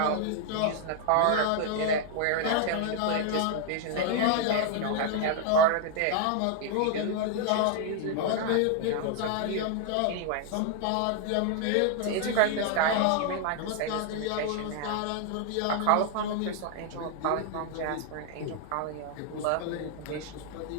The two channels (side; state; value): both; different; correlation 0.00